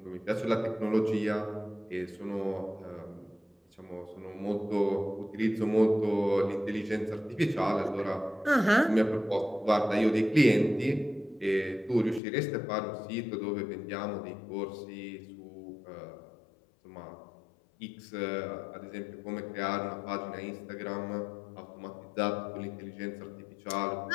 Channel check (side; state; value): right; drops out; at 12.2 s